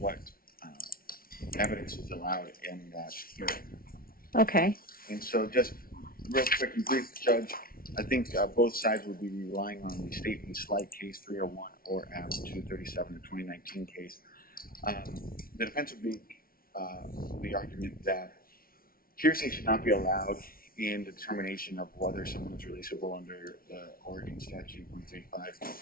evidence is allowed in that hearing. Okay. And so just real quick and brief, Judge, I think both sides will be relying on the state v. Slight case 301 or M 237, the 2019 case. The defense would be the argument that hearsay should not be allowed in the determination of whether someone is releasable under the Oregon statute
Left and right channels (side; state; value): right; late; 0.43 ms